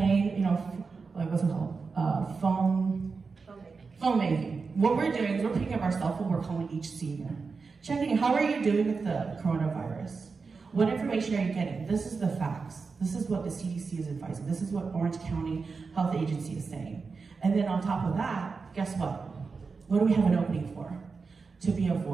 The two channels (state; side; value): quieter; left; 4.7 dB